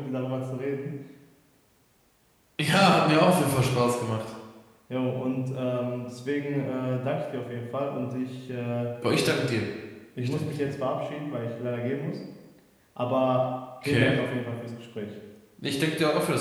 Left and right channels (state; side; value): identical; both; correlation 1.00